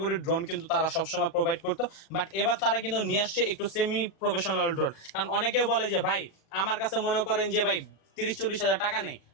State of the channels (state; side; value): late; right; 37 ms